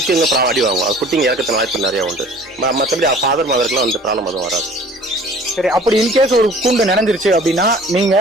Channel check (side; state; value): both; normal; correlation 0.48